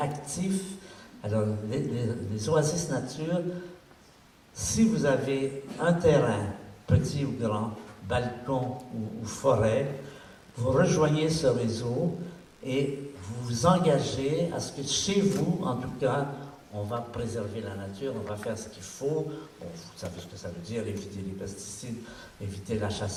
Alors, les Oasis Nature, si vous avez un terrain, petit ou grand, balcon ou forêt, vous rejoignez ce réseau et vous vous engagez à ce que chez vous, en tout cas, on va préserver la nature, on va faire ce qu'il faut. Vous savez ce que ça veut dire, éviter les pesticides, éviter la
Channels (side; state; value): both; identical; correlation 1.00